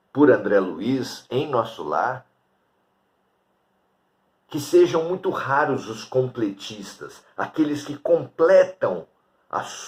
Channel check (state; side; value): identical; both; correlation 1.00